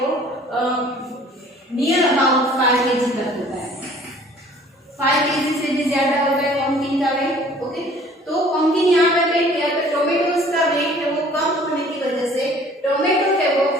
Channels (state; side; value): normal; both; correlation 0.53